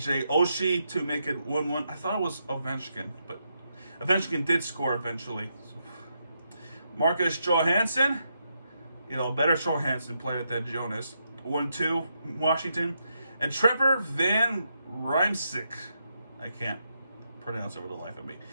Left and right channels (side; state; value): both; inverted; correlation -0.81